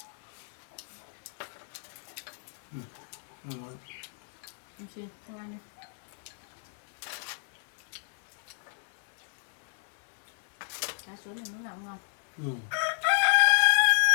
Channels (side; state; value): right; silent; 56 dB below the other